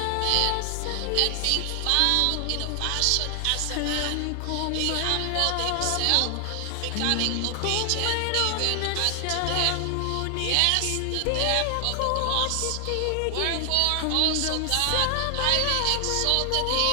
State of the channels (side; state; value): both; different; correlation 0.00